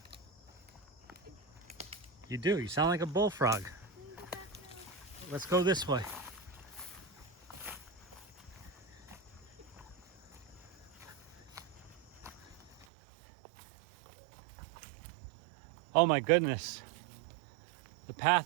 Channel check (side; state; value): left; drops out; at 12.9 s